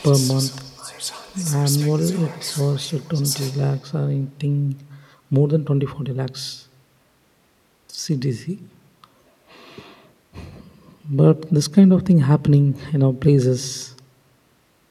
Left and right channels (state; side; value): identical; both; correlation 1.00